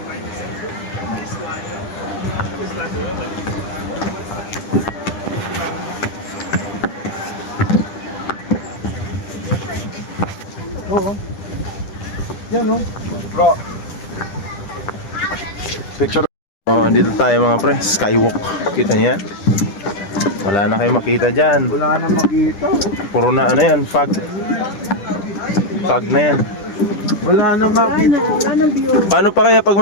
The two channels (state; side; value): late; right; 10 ms